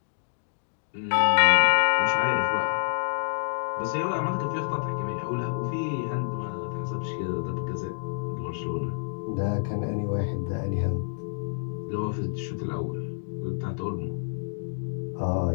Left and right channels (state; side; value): silent; right; digital silence